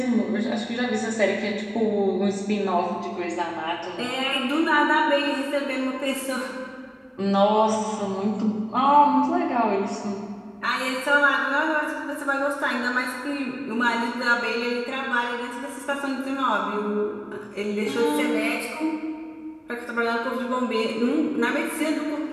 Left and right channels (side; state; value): both; identical; correlation 1.00